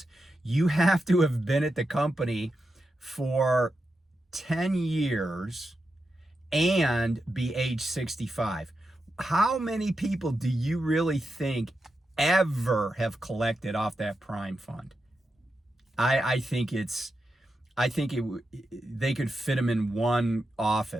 you have to have been at the company for 10 years and be age 65. How many people do you really think ever have collected off that Prime fund? I think they could fit them in one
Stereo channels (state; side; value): normal; both; correlation 0.88